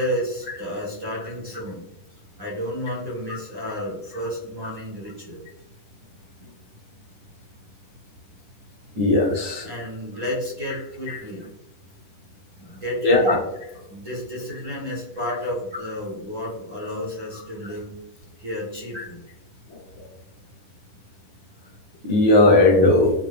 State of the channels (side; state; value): left; late; 10 ms